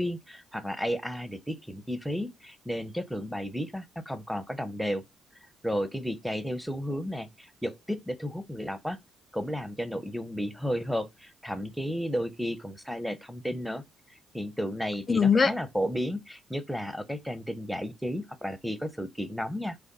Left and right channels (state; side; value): normal; both; correlation 0.90